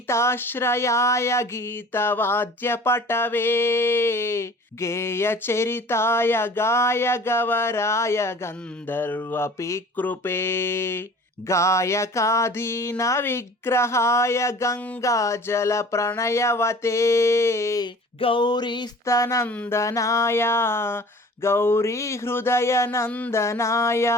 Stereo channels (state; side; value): normal; both; correlation 0.45